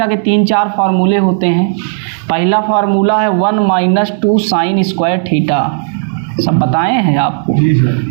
के 3-4 फार्मूले होते हैं। पहला फार्मूला है 1 माइनस 2 साइन स्क्वायर थीटा, सब बताए हैं आपको।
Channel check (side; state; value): left; silent; digital silence